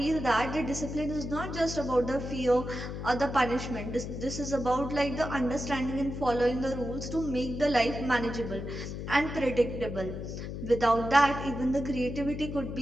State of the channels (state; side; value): noise; left; hum, 7 dB below the sound